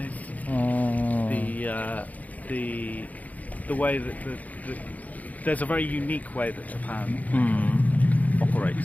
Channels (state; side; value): late; right; 0.076 ms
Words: the way that there's a very unique way that Japan